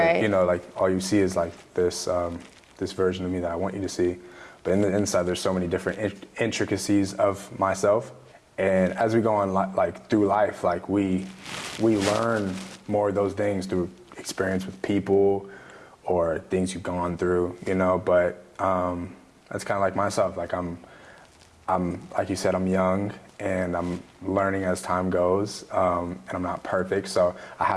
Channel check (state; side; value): identical; both; correlation 1.00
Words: like, you know, like all you see is like this version of me that I want you to see. But in the inside, there's so many different intricacies of myself. And as we go on like through life, like we learn more of those things through experience with people or things you've gone through, you know. But that's kind of like myself. Like I'm like you said, I'm young and I'm learning as time goes, and I'm not perfect, so I